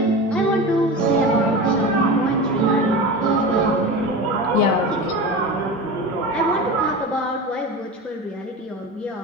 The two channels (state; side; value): normal; both; correlation 0.28